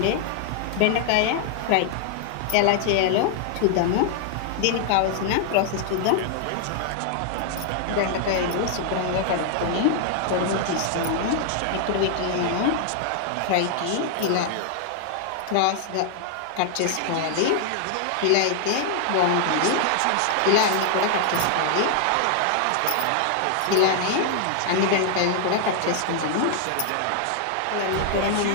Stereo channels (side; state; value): both; different; correlation 0.00